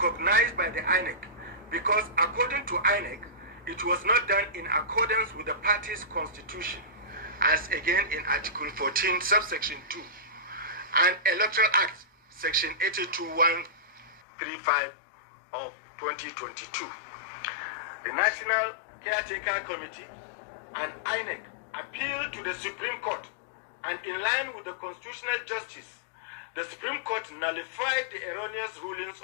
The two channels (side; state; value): right; drops out; at 14.2 s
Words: by the INEC because, according to INEC, it was not done in accordance with the party's constitution, as again in Article 14, subsection 2, and Electoral Act, Section 82135 of 2022. The National Caretaker Committee and INEC appealed to the Supreme Court, and in line with the constitutional justice, the Supreme Court nullified the erroneous rulings